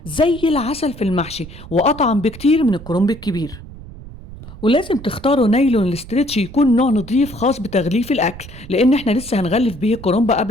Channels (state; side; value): noise; right; rumble, 16 dB below the sound